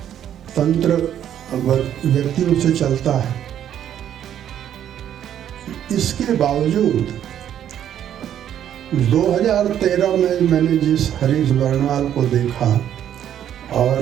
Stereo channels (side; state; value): left; quieter; 10.3 dB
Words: तंत्र व्यक्तियों से चलता है, इसके बावजूद 2013 में मैंने जिस हरीश बर्नवाल को देखा